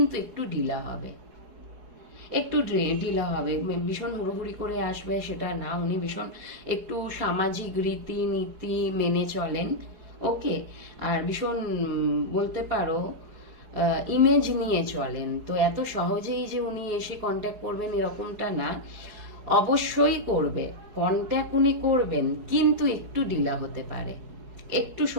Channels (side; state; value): left; late; 4.7 ms